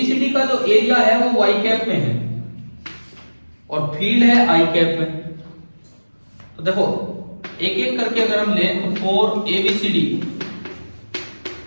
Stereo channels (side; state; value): both; inverted; correlation -1.00